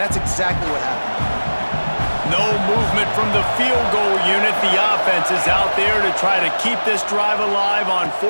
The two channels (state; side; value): inverted; both; correlation -1.00